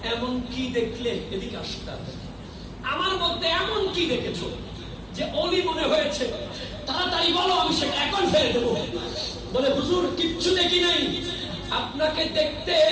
এমন কি দেখলে? এদিকে আসতে, আমার মধ্যে এমন কি দেখেছো যে অলি মনে হয়েছে? তাড়াতাড়ি বলো, আমি সেটা এখন ফেলে দেবো। বলে হুজুর কিচ্ছু দেখি নাই, আপনাকে দেখতে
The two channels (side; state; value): both; identical; correlation 1.00